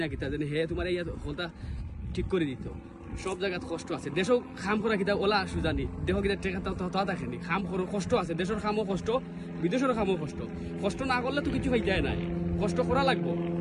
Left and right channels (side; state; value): both; identical; correlation 1.00